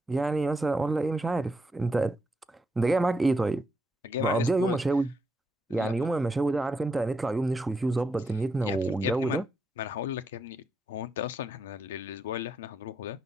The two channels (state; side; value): normal; both; correlation 0.81